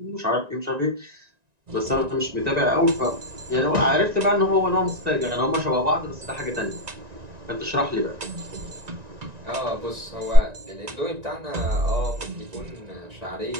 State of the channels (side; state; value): left; late; 1.9 ms